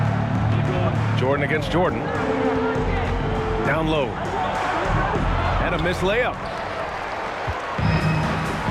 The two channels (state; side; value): identical; both; correlation 1.00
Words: Jordan against Jordan. Down low. And a missed layup.